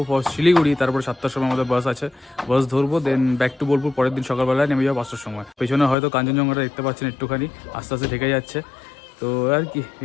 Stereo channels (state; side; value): drops out; right; at 6.0 s